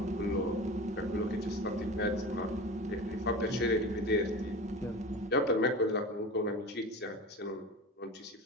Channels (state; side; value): normal; both; correlation 0.32